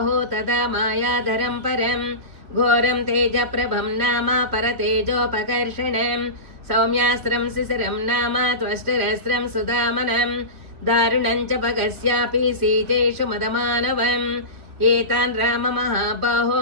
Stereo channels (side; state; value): left; late; 2.8 ms